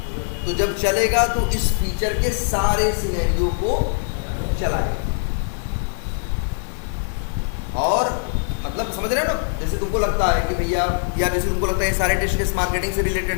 तो जब चलेगा तो इस फीचर के सारे सिनेरियो को चलाएगा। और मतलब समझ रहे हो ना, जैसे तुमको लगता है कि भैया, या जैसे तुमको लगता है ये सारे टेस्ट केस मार्केटिंग से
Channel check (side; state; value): right; silent; digital silence